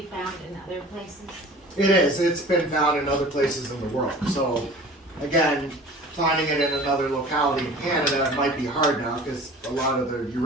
found in other places? It is. It's been found in other places in the world. So, again, finding it in another locality in Canada might be hard now because a lot of the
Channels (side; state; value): both; normal; correlation 0.43